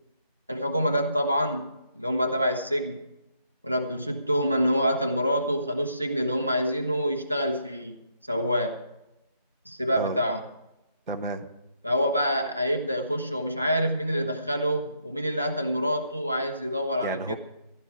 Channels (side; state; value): both; inverted; correlation -0.73